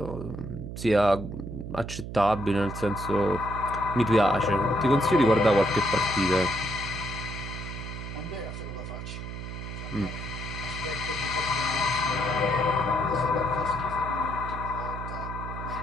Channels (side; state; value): right; noise; hum, 8 dB below the sound